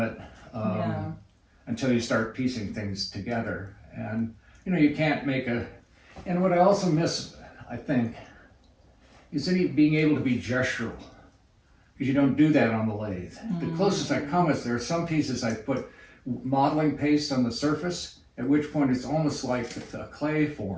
until you start piecing things together. And you can't make and what I also miss, I think, is being able to be gestural. Because you don't do that on the lathe. The closest I come is there are some pieces I put modeling paste on the surface, at which point it's almost like a clay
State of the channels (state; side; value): identical; both; correlation 1.00